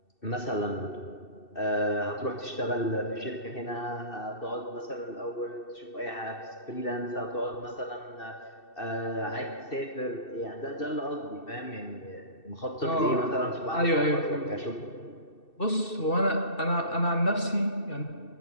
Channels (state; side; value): late; right; 2.7 ms